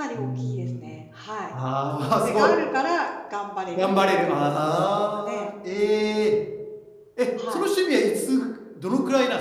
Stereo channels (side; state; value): both; identical; correlation 1.00